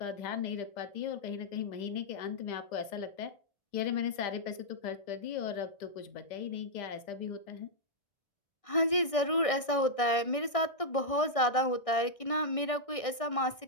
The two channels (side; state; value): right; late; 1.6 ms